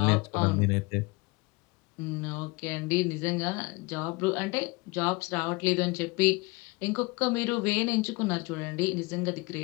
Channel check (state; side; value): quieter; right; 25.3 dB